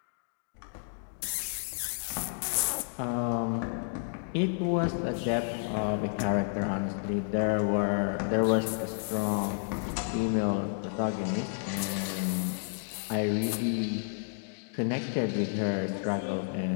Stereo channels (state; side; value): silent; right; digital silence